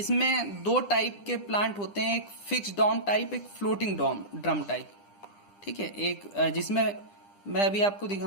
दो टाइप के प्लांट होते हैं, एक फिक्स डॉम टाइप, एक फ्लोटिंग ड्रम टाइप। ठीक है, एक जिसमें मैं अभी आपको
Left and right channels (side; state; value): right; late; 9.9 ms